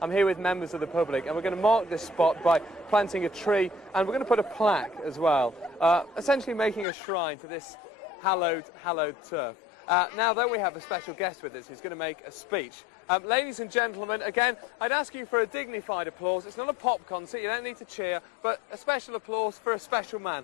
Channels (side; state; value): right; drops out; at 6.9 s